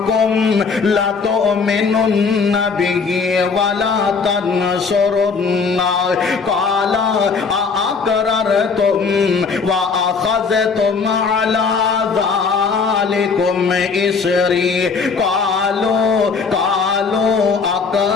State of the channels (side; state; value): right; quieter; 5.0 dB